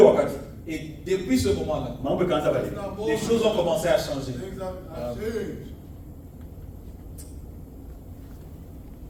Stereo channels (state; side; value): identical; both; correlation 1.00